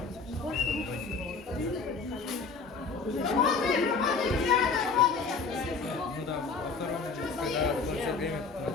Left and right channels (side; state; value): right; quieter; 4.7 dB